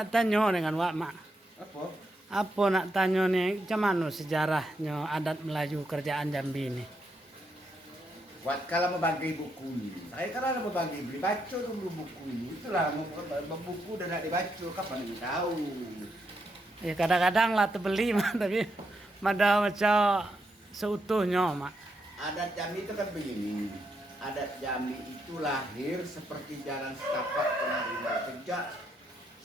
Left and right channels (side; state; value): both; normal; correlation 0.80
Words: tanya dengan Wak Mak. Apa? Apa nak tanya nih, macam mana sejarahnya adat Melayu kerjaan Jambi ini? Buat kalau mau bagi buku ini, saya kalau mau bagi beli baca dulu buku ini. Itulah mau buku dan nak dibaca kapan ini tahu. Kadang-kadang lah terbeli mah, tapi ada macam seutuhnya Mak. Adat Jambi itu kan begini. Adat Jambi itu lahir seperti jalan setapak penarinya sejak